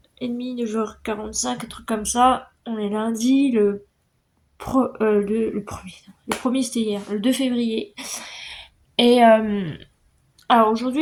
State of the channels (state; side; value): identical; both; correlation 1.00